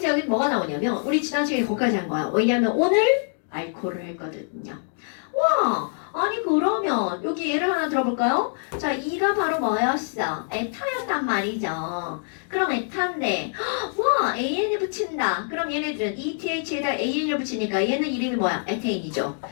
여기 뭐가 나오냐면 우리 지난 시간에 거기까지 한 거야. 왜냐면 오늘 알코올을 했거든요. 와, 아니 그러면 여기 예를 하나 들어볼까요? 자, 이가 바로 뭐였어? 에타였단 말이죠. 그럼 에타인데 와, AN을 붙인다. 그럼 얘네들은 ETH에다 AN을 붙이니까 얘는 이름이 뭐야? 에테인이죠.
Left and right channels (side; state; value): right; silent; 62 dB below the other